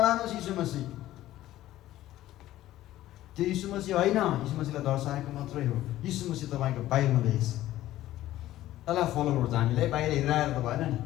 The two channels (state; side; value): quieter; right; 14.6 dB